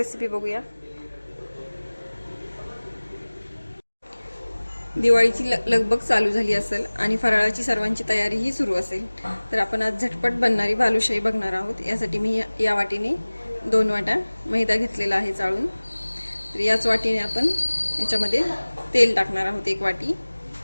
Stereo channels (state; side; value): inverted; both; correlation -1.00